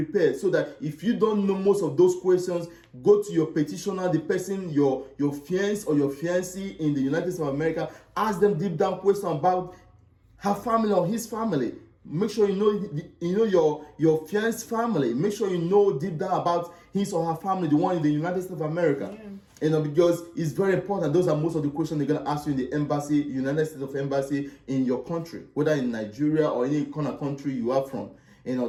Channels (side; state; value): both; identical; correlation 1.00